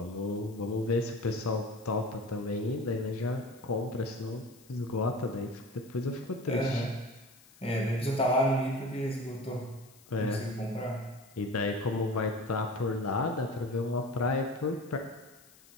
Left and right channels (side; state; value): left; noise; hiss, 25 dB below the sound